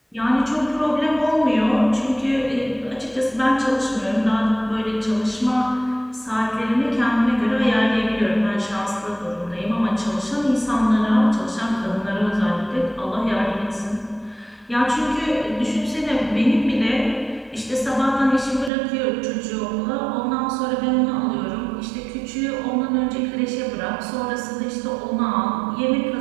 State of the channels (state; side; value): drops out; left; at 18.7 s